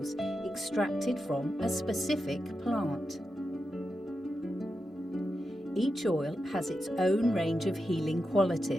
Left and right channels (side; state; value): both; normal; correlation 0.89